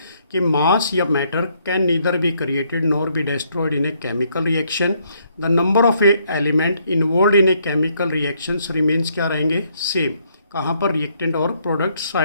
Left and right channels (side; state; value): both; inverted; correlation -0.70